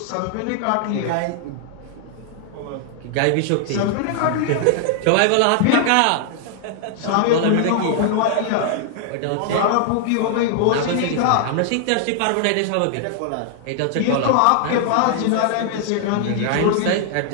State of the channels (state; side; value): different; both; correlation 0.00